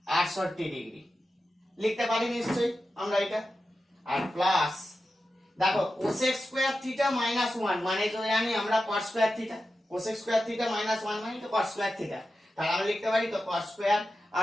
68 ডিগ্রি, লিখতে পারি নিশ্চয়ই আমরা এটা। আর প্লাস দেখো cosec স্কয়ার থিটা মাইনাস 1 মানে তো জানি আমরা cos square theta, cosec square theta minus 1 মানে তো cos স্কয়ার থিটা, তাহলে আমরা লিখতে পারি তো cos স্কয়ার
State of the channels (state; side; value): normal; both; correlation 0.92